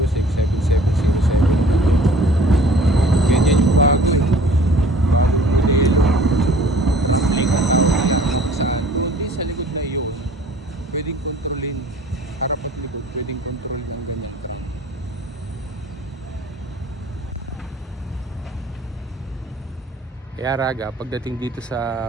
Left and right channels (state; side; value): normal; both; correlation 0.51